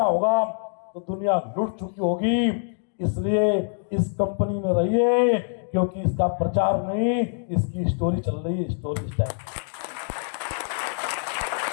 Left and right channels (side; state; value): right; silent; digital silence